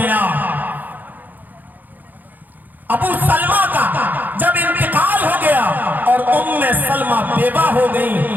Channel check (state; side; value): late; left; 0.084 ms